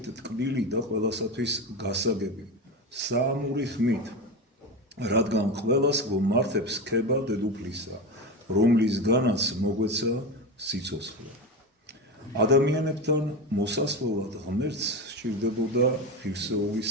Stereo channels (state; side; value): normal; both; correlation 0.21